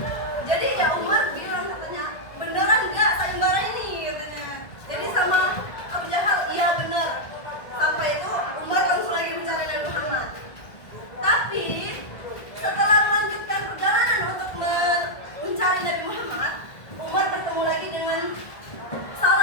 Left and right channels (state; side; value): late; right; 1.6 ms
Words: Jadi ya Umar bilang katanya, beneran nggak sayembara ini katanya. Jadi sama Abu Jahal, iya bener. Sampai itu Umar langsung lagi mencari Nabi Muhammad. Tapi setelah melanjutkan perjalanan untuk mencari Nabi Muhammad, Umar bertemu lagi dengan